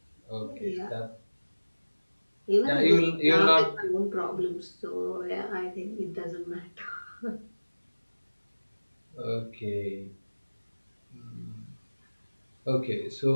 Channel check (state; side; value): inverted; both; correlation -1.00